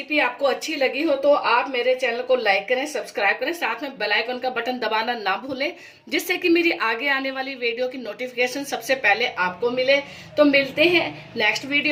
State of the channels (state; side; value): identical; both; correlation 1.00